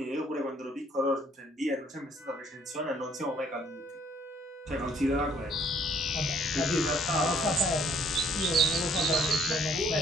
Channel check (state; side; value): normal; both; correlation 0.63